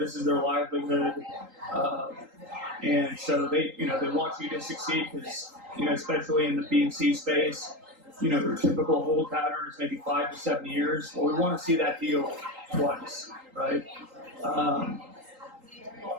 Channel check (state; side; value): late; left; 3.8 ms